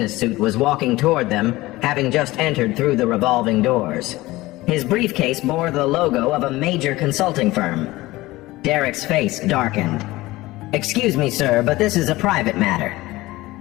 suit was walking toward them, having just entered through the revolving doors. His briefcase bore the logo of a major consulting firm. Derek's face darkened. Excuse me, sir, but this is a private matter.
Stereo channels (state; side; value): quieter; right; 18.9 dB